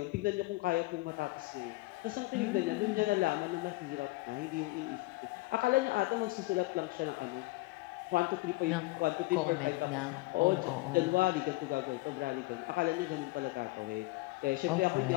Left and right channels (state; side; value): quieter; right; 21.4 dB